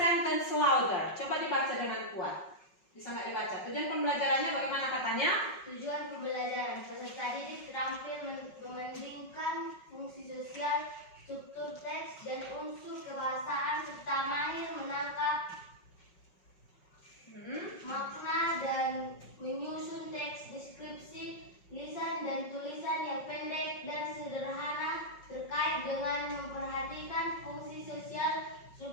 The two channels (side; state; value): right; late; 5.4 ms